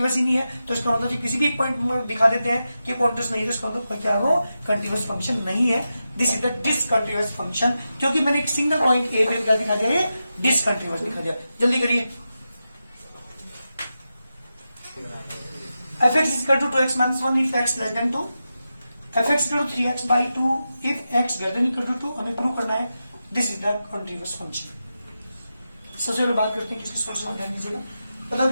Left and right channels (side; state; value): both; inverted; correlation -0.90